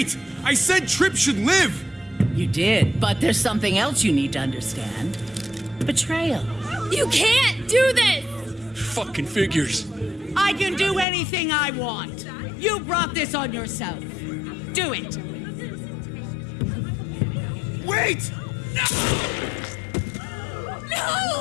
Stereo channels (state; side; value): drops out; right; at 11.1 s